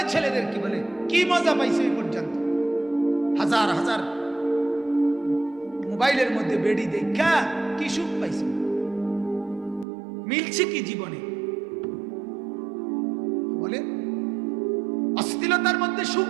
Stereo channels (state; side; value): drops out; left; at 9.9 s